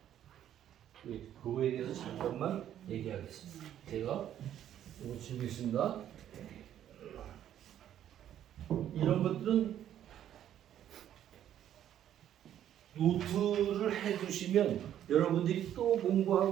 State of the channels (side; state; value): left; quieter; 10.9 dB